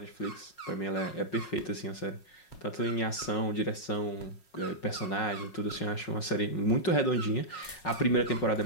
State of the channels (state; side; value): late; right; 5.5 ms